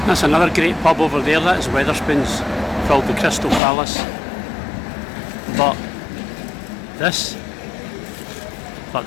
That's another great pub over there, that is Wetherspoons, called the Crystal Palace. But this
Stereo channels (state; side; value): drops out; right; at 3.6 s